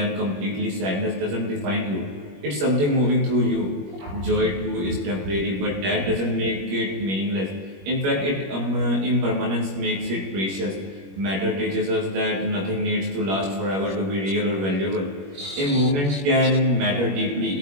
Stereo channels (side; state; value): left; late; 21 ms